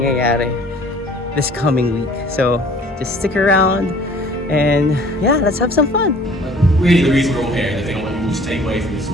this coming week. So just stick around and yeah, let's have some fun. Really, the reason we're all here, and the thing I want you all to take away from this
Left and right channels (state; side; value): normal; both; correlation 0.52